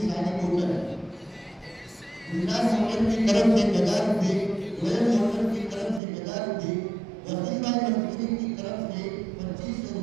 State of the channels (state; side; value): drops out; left; at 6.0 s